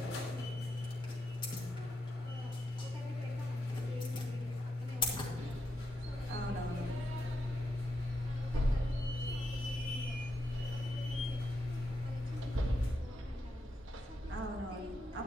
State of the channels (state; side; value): normal; both; correlation 0.84